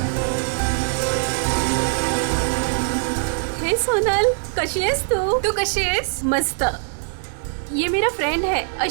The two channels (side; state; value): left; silent; 61 dB below the other